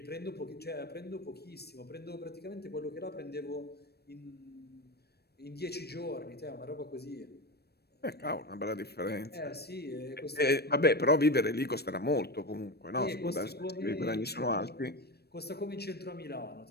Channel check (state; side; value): late; right; 0.47 ms